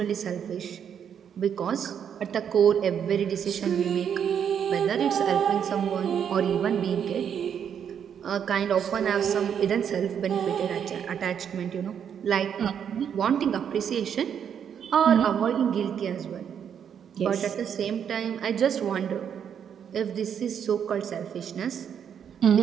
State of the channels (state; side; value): quieter; left; 8.2 dB